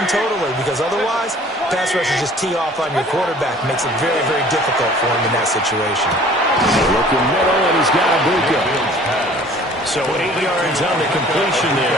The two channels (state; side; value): normal; both; correlation 0.51